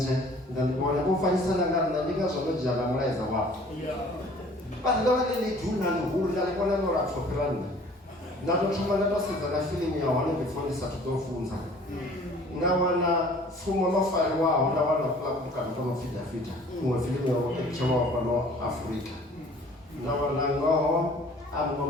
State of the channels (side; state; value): both; normal; correlation 0.51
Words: ndandibona vho fanyisana nga nṋe ndi ngazwo ndo dzhia na mulaedza wavho vhathu ndo vha ḽi duna ḽihulu nda ḽi kona no lapfho fhira nṋe nda to thoma nda to sedza na fiḽimu ya hone before ndi sathu ḓo funza nda wana pfumo ḽo fariwaho nda wana mukano to no pfi Davida iṅwe fiḽimu ya etshelwaho fhano Afrika nda wana ngoho a muṅwe